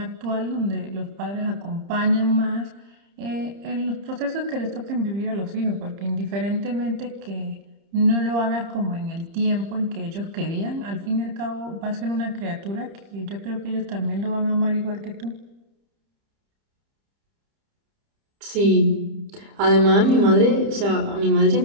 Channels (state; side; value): late; left; 30 ms